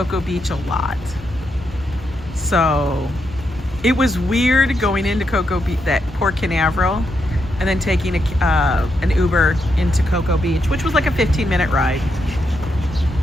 Beach a lot. So it was weird going into Cocoa Beach, that Port Canaveral, and then taking an Uber into Cocoa Beach, which was like a 15-minute ride.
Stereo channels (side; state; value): both; normal; correlation 0.82